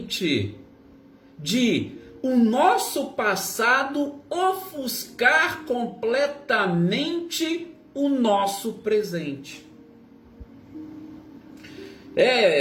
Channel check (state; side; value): identical; both; correlation 1.00